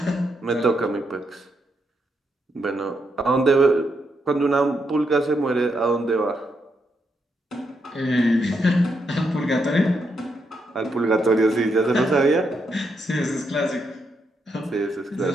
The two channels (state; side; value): normal; both; correlation 0.80